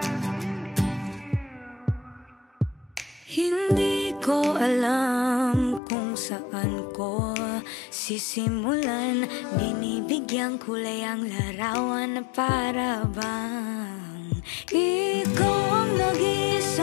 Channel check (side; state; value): right; drops out; at 5.8 s